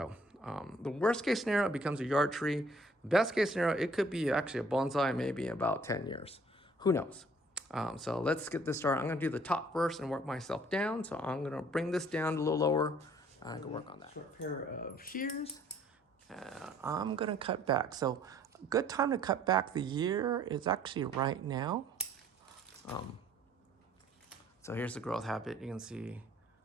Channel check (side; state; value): both; normal; correlation 0.59